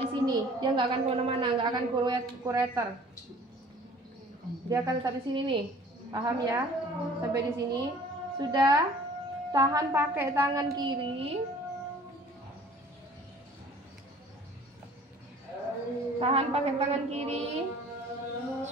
di sini. Dia nggak akan kemana-mana, nggak akan kureter. Dia akan tetap di sini nih, paham ya? Sampai di sini. Sudah, tahan pakai tangan kiri. Tahan pakai tangan kiri.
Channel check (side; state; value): both; normal; correlation 0.50